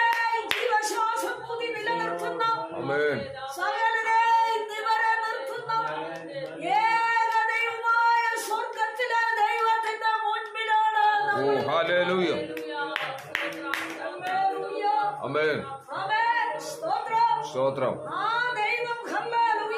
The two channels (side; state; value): both; identical; correlation 1.00